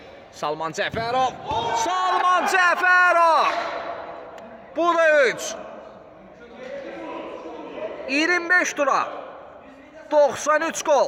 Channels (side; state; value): both; identical; correlation 1.00